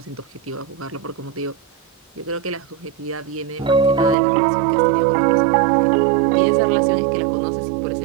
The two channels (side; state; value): left; drops out; at 4.2 s